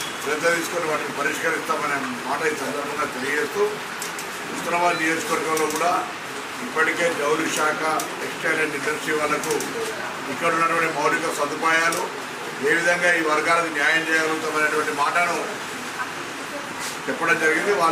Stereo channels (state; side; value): identical; both; correlation 1.00